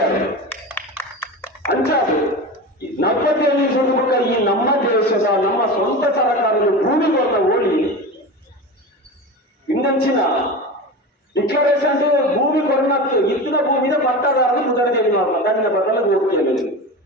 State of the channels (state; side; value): normal; both; correlation 0.27